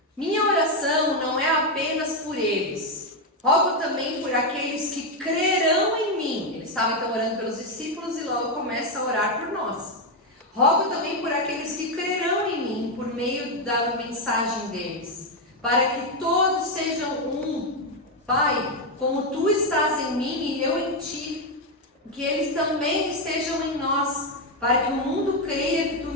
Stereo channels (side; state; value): both; normal; correlation 0.05